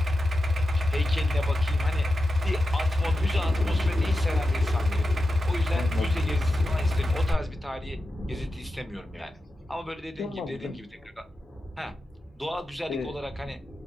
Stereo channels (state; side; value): normal; both; correlation 0.90